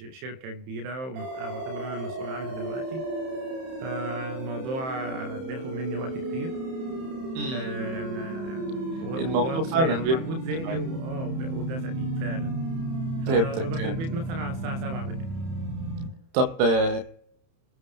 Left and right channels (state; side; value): late; left; 31 ms